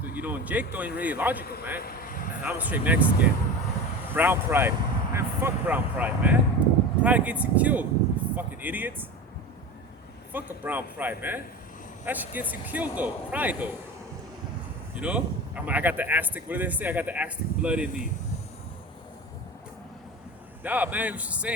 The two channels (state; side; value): normal; both; correlation 0.29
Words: You know, and Jake though ain't really logical, man. I'm a straight Mexican. Brown pride, man. Fuck brown pride, man. Pride gets you killed, you fucking idiots. Fuck a brown pride, man. That shit gets you killed though. Pride though. You know? I got the Aztec. What do they say? I got the Aztec blood in me. Nah, man. You should